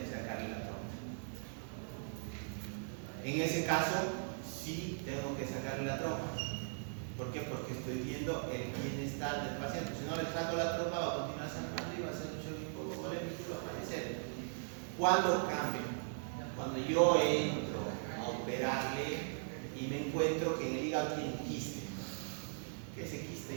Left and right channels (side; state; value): left; silent; digital silence